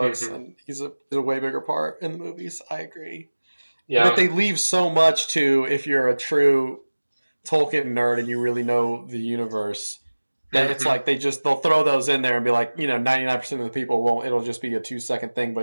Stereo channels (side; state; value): both; inverted; correlation -1.00